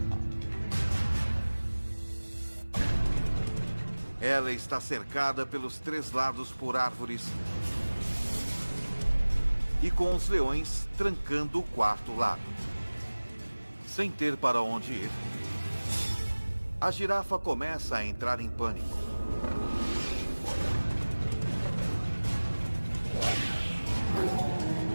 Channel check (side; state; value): both; inverted; correlation -1.00